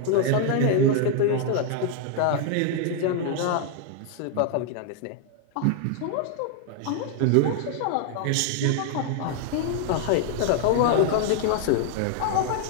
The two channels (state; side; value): different; both; correlation 0.00